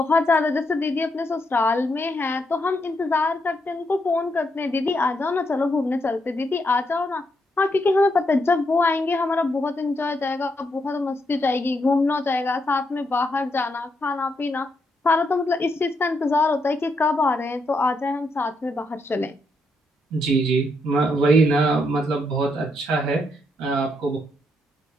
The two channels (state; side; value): normal; both; correlation 0.79